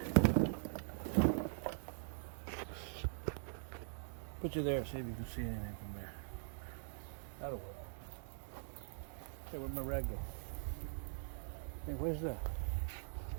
Put you there, see if you can see anything from there. That'll work. Hey, where'd my rag go? Hey, where's that?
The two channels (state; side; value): silent; left; digital silence